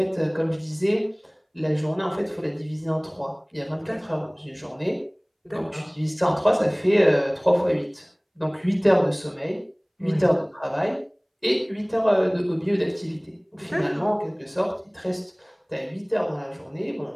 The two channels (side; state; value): both; identical; correlation 1.00